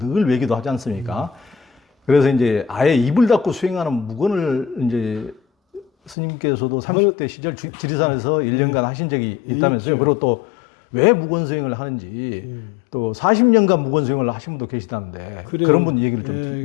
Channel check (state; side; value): drops out; right; at 6.2 s